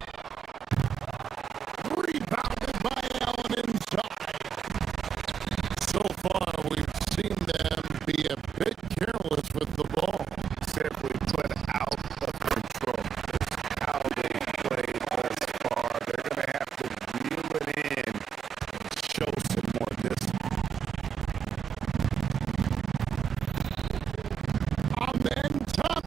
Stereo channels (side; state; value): left; quieter; 7.6 dB